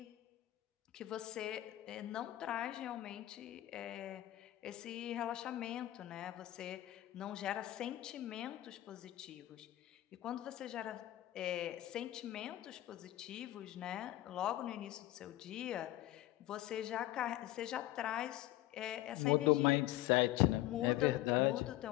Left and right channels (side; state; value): right; quieter; 15.6 dB